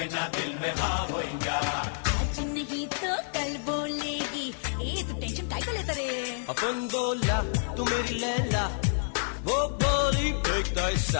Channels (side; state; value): right; silent; 56 dB below the other